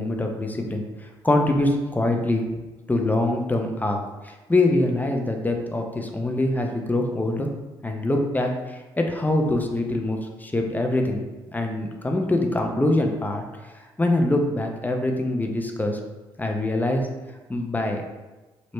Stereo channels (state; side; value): normal; both; correlation 0.82